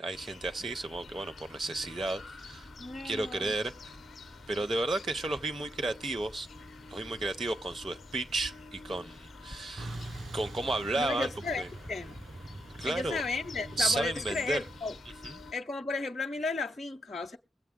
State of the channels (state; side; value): normal; both; correlation 0.80